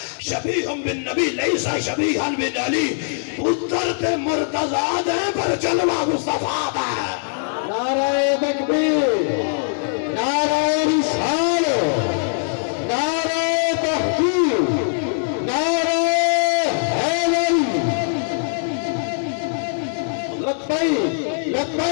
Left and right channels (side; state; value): right; silent; digital silence